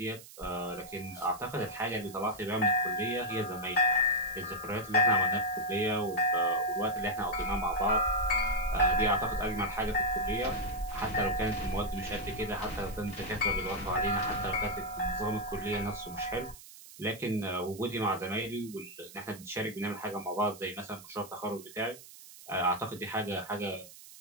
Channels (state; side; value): noise; right; hiss, 18 dB below the sound